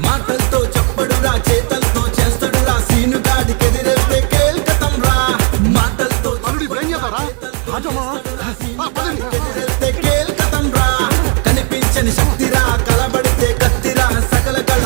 మాటలతో చెప్పడురా, చేతలతో చేస్తాడురా, సీనుగాడికి ఎదిరేస్తే కేల్కతం రా. మాటలతో కేల్కతం రా. కనిపించని శక్తిరా, కలబడితే కత్తిరా, సకల కళ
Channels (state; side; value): quieter; left; 37.3 dB